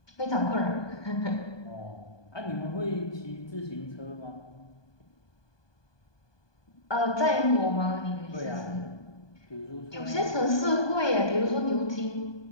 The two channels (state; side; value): late; right; 1.2 ms